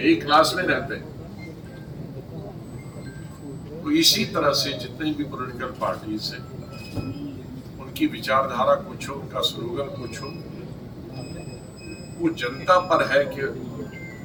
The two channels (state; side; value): identical; both; correlation 1.00